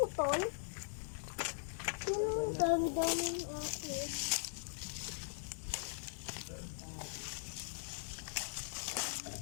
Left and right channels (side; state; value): right; silent; digital silence